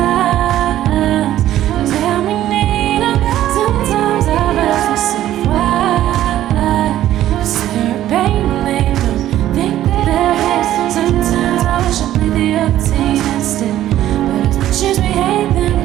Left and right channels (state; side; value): quieter; left; 13.0 dB